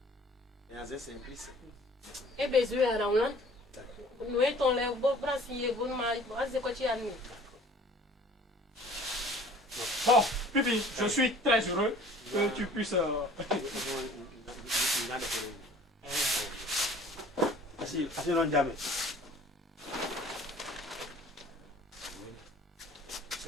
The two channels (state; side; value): normal; both; correlation 0.50